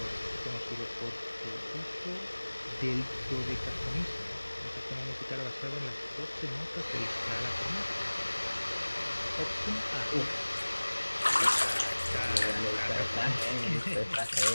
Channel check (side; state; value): both; inverted; correlation -1.00